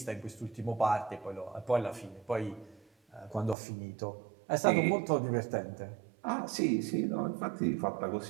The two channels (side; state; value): left; drops out; at 3.6 s